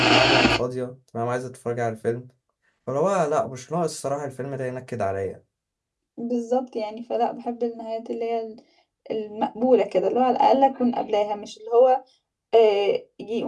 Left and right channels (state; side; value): identical; both; correlation 1.00